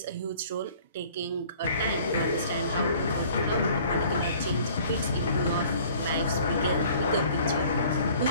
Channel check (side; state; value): both; inverted; correlation -0.52